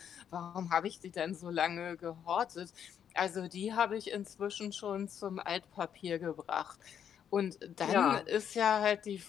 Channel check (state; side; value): quieter; right; 8.7 dB